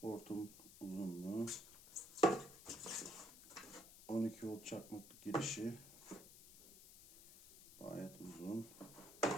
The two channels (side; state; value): left; noise; hiss, 17 dB below the sound